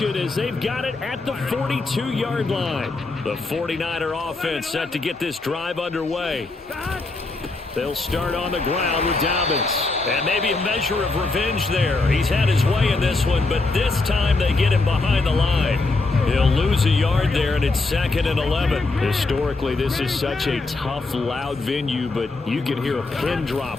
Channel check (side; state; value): right; quieter; 3.4 dB